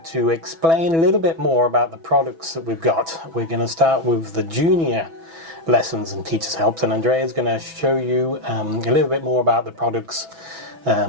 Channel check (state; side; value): late; left; 6.1 ms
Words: to explain a little bit more about the products that we've got. We're going to start with the junior lessons and teachers helps, and Andrea is going to show you a little bit more about the products